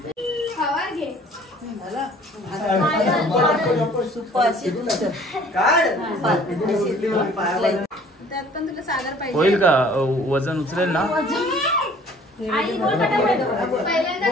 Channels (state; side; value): normal; both; correlation 0.53